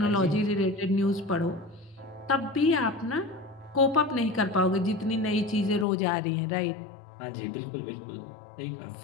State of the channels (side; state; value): right; drops out; at 5.9 s